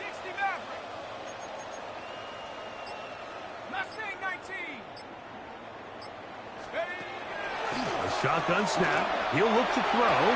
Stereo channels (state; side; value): identical; both; correlation 1.00